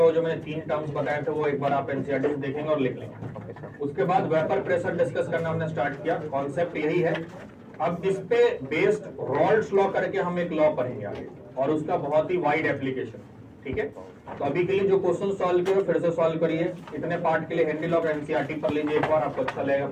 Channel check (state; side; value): identical; both; correlation 1.00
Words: वो जो मैंने 3 टर्म्स बताए थे वो एक बार आप एनसीईआरटी से देखेंगे और लिख लेंगे। उसके बाद वेपर प्रेशर डिस्कस करना हमने स्टार्ट किया, कॉन्सेप्ट यही है। अब इस पे बेस्ड रॉल्ड्स लॉ करके हम एक लॉ पढ़ेंगे आगे, और उसका बहुत ही वाइड एप्लीकेशन, ठीक है। तो अभी के लिए जो क्वेश्चन सॉल्व किए फिर से सॉल्व करिए। इतने पार्ट के लिए हेनरी लॉ और एनसीईआरटी पढ़ लीजिए एक बार, आपको अच्छा लगेगा